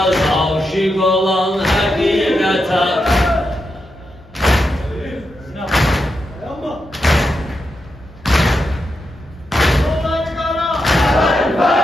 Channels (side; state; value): both; normal; correlation 0.85